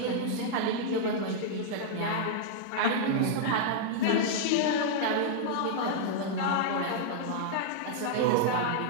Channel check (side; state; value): both; different; correlation -0.01